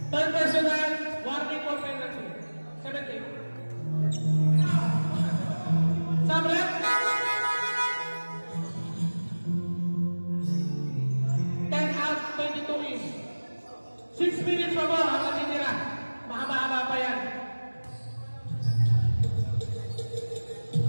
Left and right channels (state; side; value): inverted; both; correlation -1.00